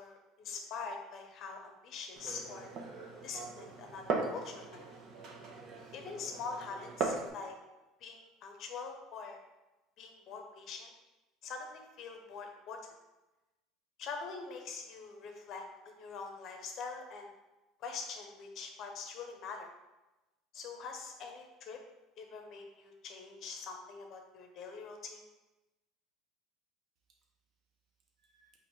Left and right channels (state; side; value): normal; both; correlation 0.43